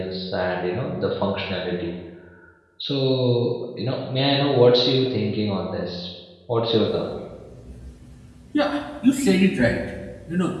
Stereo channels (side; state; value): both; identical; correlation 1.00